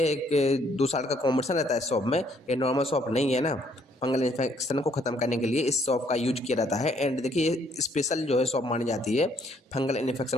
एक 2 साल का कॉम्बिनेशन रहता है शॉप में, ये नॉर्मल शॉप नहीं है ना। फंगल इन्फेक्शन को ख़त्म करने के लिए इस शॉप का यूज किया जाता है। एंड देखिए स्पेशल जो है शॉप मानी जाती है फंगल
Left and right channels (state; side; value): normal; both; correlation 0.67